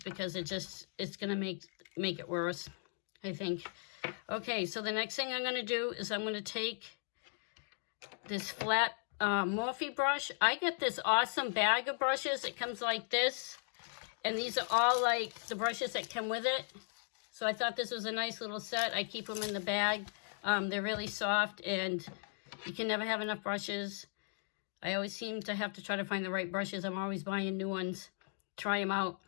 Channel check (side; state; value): right; silent; digital silence